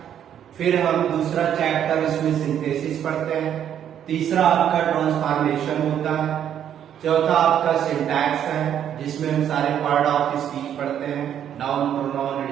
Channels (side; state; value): left; quieter; 9.7 dB